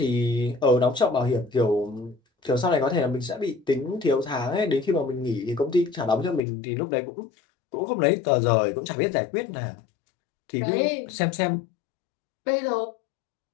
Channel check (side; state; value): right; drops out; at 6.4 s